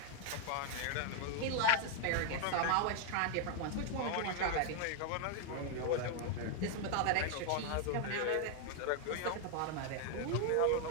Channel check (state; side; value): different; both; correlation 0.00